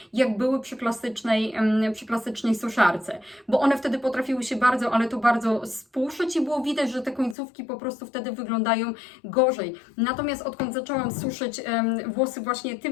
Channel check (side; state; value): right; drops out; at 7.4 s